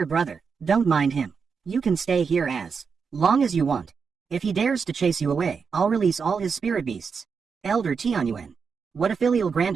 brother, don't mind him. You can stay here as long as you want. If he dares to chase you away, I'll release all his spirit beasts. Elder Tianyuan. What a filial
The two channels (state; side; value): quieter; left; 5.7 dB